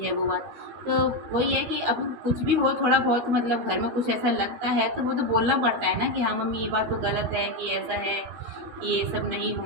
है, वो बात। तो वही है कि अब कुछ भी हो, थोड़ा बहुत मतलब घर में कुछ ऐसा लगता है तो वो तो बोलना पड़ता है ना कि हाँ मम्मी ये बात तो गलत है, कि ऐसा है, कि ये सब नहीं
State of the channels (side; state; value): left; late; 13 ms